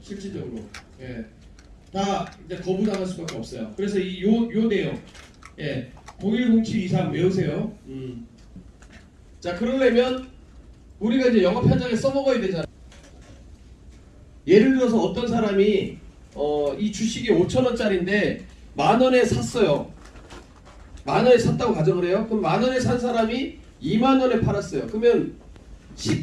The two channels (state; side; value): identical; both; correlation 1.00